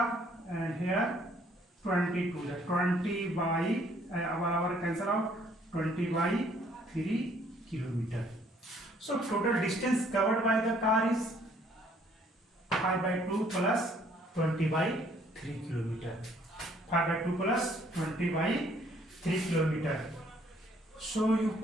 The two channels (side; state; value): both; normal; correlation 0.63